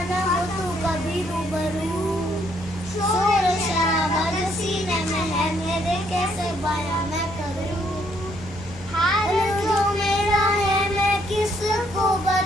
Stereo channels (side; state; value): both; normal; correlation 0.70